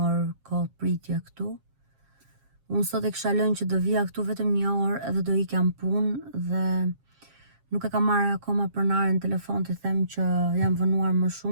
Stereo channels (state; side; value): late; left; 7.4 ms